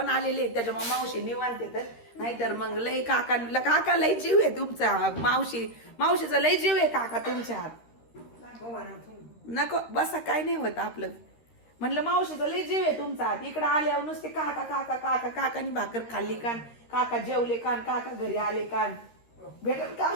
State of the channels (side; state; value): right; late; 13 ms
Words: आलेले आहेत. त्याच्यामुळे मावशी निवांत येतात. नाहीतर मग लई काका लई जीव आहे तुमचा. मावशीचा लई जीव आहे काका तुमच्या हात. नको बसा, काय नाही होत आपलं. म्हणलं मावशीचा लई जीव आहे तुमचा हात. इकडे आल्यावर नुसते काका काका काका. काकानी भाकर खाल्ली कान, काका जेवले कान, काका घरी आले कान. भेटल का